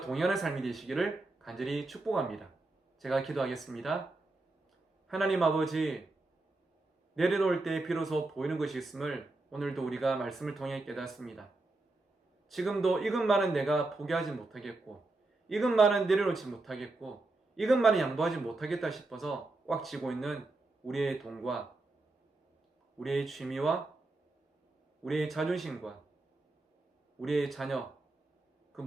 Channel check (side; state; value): left; quieter; 3.1 dB